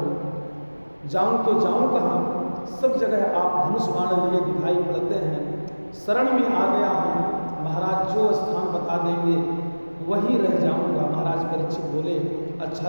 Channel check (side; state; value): both; inverted; correlation -1.00